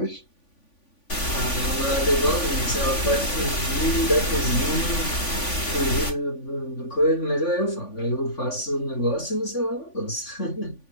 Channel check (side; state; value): right; late; 3.5 ms